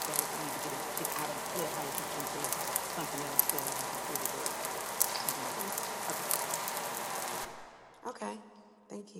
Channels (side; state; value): both; identical; correlation 1.00